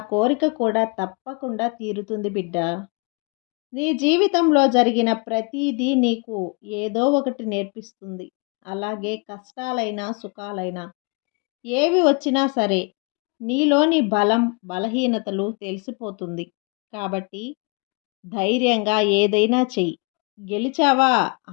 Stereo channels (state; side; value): quieter; right; 31.6 dB